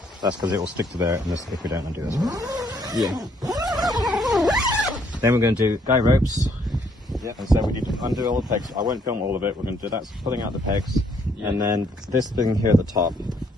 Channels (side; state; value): both; normal; correlation 0.68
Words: That's because it will stick to there if we don't undo this one. Yeah. Then we're going to do guy ropes. Yeah. And so we need to undo all the pegs. I won't film all of it. We're going to do that, pulling out the pegs, and then this thing here at the top.